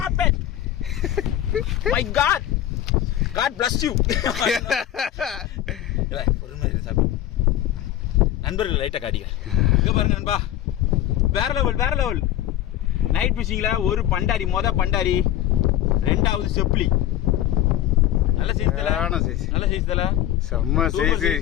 it. My god, god bless you. ஒரு மாதிரி சாப்பி நண்பர்கள் லைட்டாக காட்டிக்க. இங்கே பாருங்க நண்பா, வேற லெவல் வேற லெவல். நைட் ஃபிஷிங்கில் ஒரு பண்டாரி, பண்டாரி, 2வது செப்லி. நல்ல சைஸ் தல. சைஸ். நல்ல சைஸ் தல. செம்ம சைஸ்.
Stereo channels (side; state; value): right; quieter; 12.4 dB